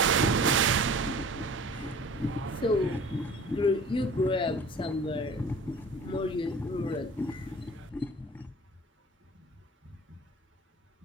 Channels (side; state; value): both; normal; correlation 0.44